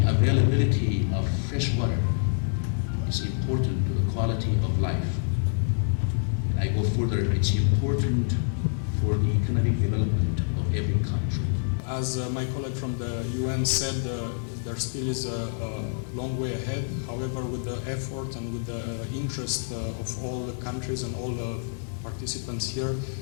availability of fresh water is important to the quality of life. And I go further, it's important for the economic development of every country. As my colleague from the UN said, there still is a long way ahead. However, with the effort and with the interest of all the countries and all the participants here,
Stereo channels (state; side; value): silent; right; digital silence